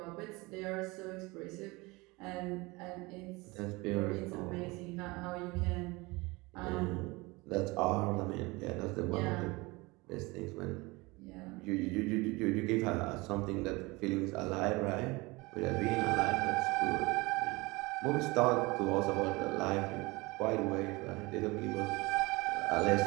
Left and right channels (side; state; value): left; quieter; 23.9 dB